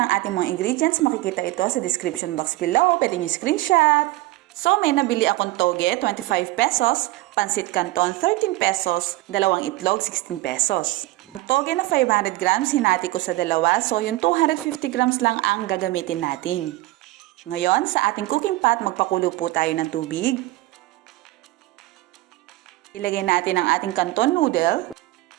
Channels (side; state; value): left; quieter; 18.3 dB